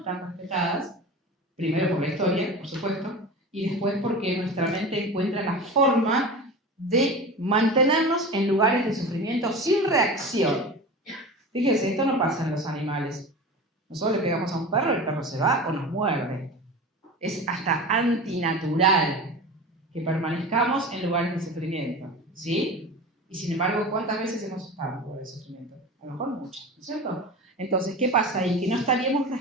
respetadas, primero por la historia, por supuesto, y después porque nuestra mente encuentra la forma de mantenernos en lugares de sufrimiento sin reacción. Fíjense, esto no pasa en los animales. Nosotros le pegamos a un perro, el perro se va o nos muerde. Es hasta antinatural que permanezcamos en lugares de sufrimiento, ¿sí? Y sin embargo, ¿cuántas veces hemos estado en lugares de sufrimiento? A lo mejor muchas, ¿no es cierto? Entonces, ¿qué pasa ahí? Que no estaríamos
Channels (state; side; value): normal; both; correlation 0.31